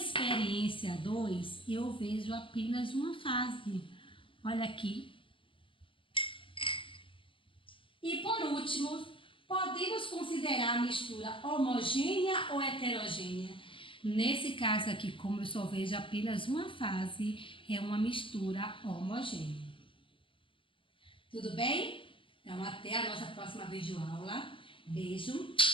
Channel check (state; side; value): late; right; 0.25 ms